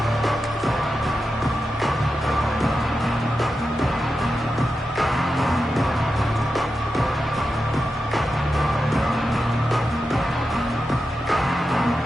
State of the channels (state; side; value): normal; both; correlation 0.90